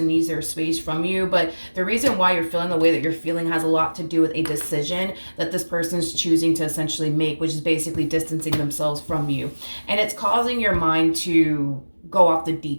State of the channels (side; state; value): both; inverted; correlation -1.00